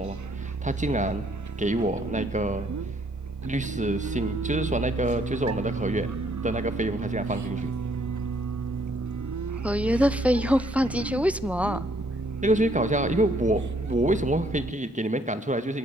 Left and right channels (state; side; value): normal; both; correlation 0.66